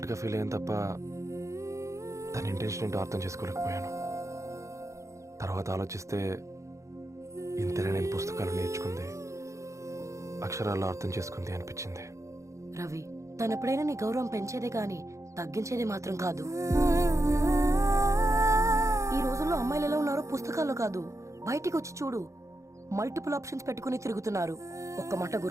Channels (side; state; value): left; late; 0.15 ms